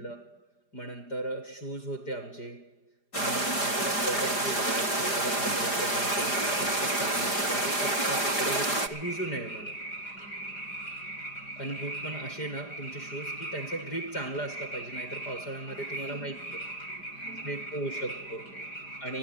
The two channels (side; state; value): right; late; 4.9 ms